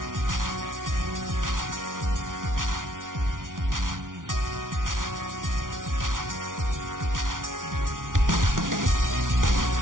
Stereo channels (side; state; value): left; late; 0.88 ms